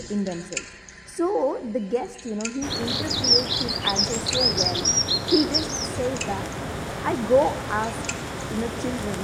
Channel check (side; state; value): both; identical; correlation 1.00